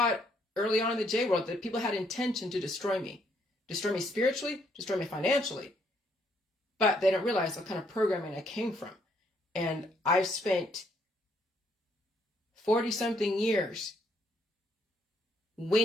it early on in the J world that people had intention to destroy me spiritually, destroy me financially, but they don't realize what kind of programming I came from. And I've spent 40-something years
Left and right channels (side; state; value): both; normal; correlation 0.70